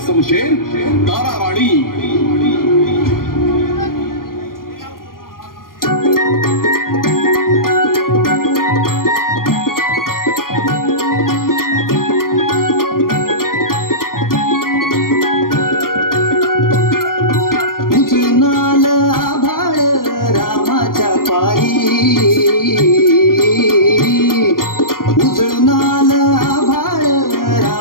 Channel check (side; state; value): right; late; 0.91 ms